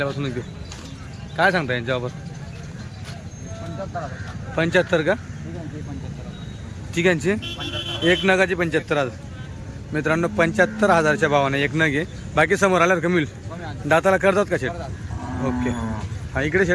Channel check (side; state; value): both; identical; correlation 1.00